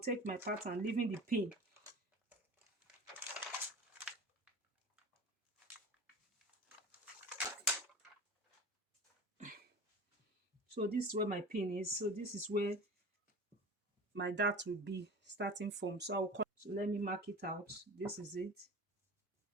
my pattern, leaving the pin. So this is where my pin is. So this is where my dart will be starting from. So I'll cut. So let me mark it out. This is it.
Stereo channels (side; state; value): both; normal; correlation 0.36